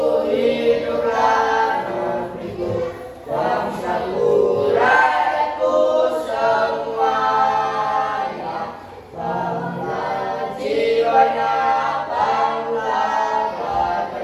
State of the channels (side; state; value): both; identical; correlation 1.00